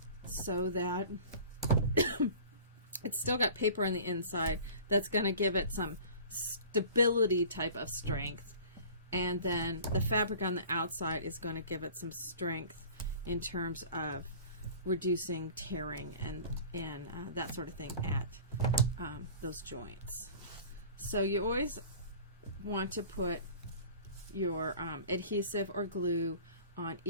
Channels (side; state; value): both; inverted; correlation -0.43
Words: so that it's still got paper on the inside. That's going to give it some stability type of strength. And then the fabric on the outside is going to give it some strength in terms of reducing tearing and that sort of thing at those joints. So you always want to put your adhesive or glue on